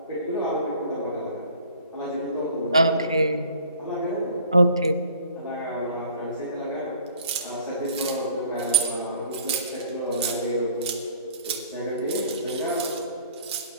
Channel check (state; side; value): inverted; both; correlation -0.52